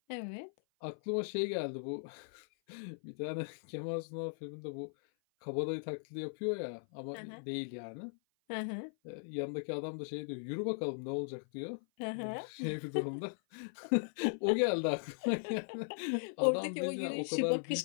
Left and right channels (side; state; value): right; silent; 52 dB below the other